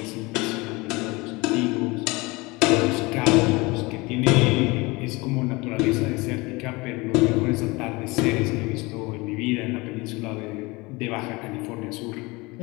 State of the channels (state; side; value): quieter; right; 24.1 dB